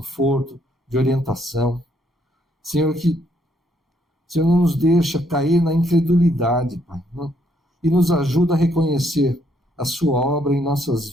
de orientação. Senhor, que o Senhor não nos deixa cair na incredulidade, Pai, e nos ajuda a reconhecer a sua obra em nossas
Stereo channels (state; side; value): normal; both; correlation 0.71